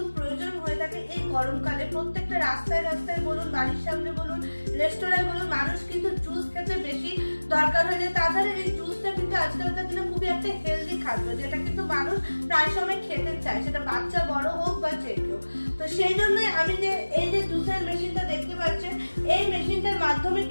প্রয়োজন হয়ে থাকে এই গরমকালে। প্রত্যেকটা রাস্তায় রাস্তায় বলুন, বাড়ির সামনে বলুন, রেস্টুরেন্টে বলুন, মানুষ কিন্তু জুস খেতে বেশি দরকার হয়ে যায়। তাছাড়া এই জুসটা কিন্তু আজকালকার দিনে খুবই একটা হেলদি খাদ্য, যেটা কিন্তু মানুষ প্রায় সময় খেতে চায়, সেটা বাচ্চা বড় হোক বা যে কেউ। তো সেই জন্যই আমি যে এই যে জুসের মেশিনটা দেখতে পাচ্ছেন, এই মেশিনটার মাধ্যমে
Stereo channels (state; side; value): inverted; both; correlation -1.00